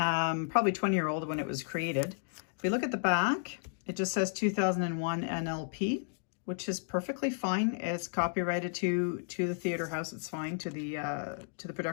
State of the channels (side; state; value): right; silent; digital silence